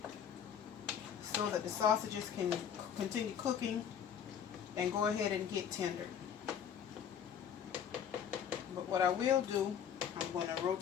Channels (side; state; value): right; quieter; 8.4 dB